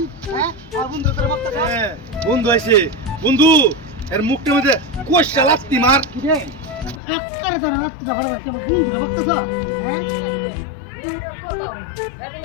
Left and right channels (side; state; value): right; drops out; at 7.0 s